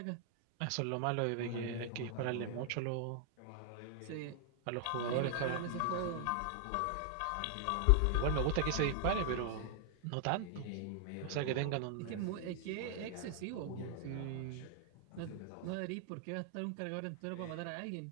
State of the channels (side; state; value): both; different; correlation 0.00